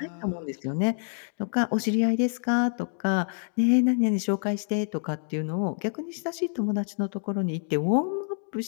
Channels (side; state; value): right; silent; digital silence